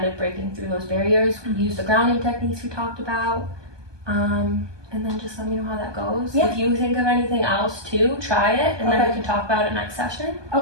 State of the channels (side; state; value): left; late; 1.2 ms